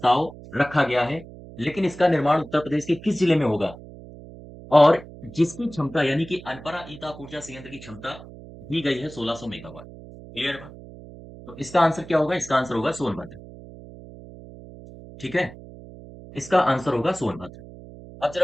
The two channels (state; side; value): noise; right; hum, 17 dB below the sound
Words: रखा गया है, लेकिन इसका निर्माण उत्तर प्रदेश के किस जिले में होगा? और जिसकी क्षमता यानी कि अनपरा ईताप ऊर्जा संयंत्र की क्षमता दी गई है 1600 मेगावाट। क्लियर बात? तो इसका आंसर क्या होगा? इसका आंसर होगा सोनभद्र। ठीक है? इसका आंसर होगा सोनभद्र। अब